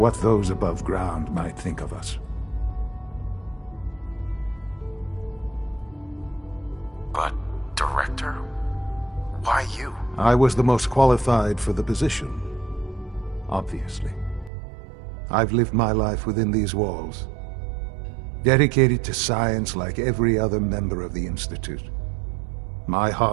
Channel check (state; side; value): drops out; left; at 14.5 s